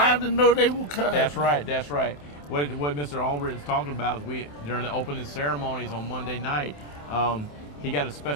I didn't know they were coming. That's right. That's right. What Mr. Albritton's talking about is during the opening ceremonies on Monday night, he got a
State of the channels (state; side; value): late; right; 27 ms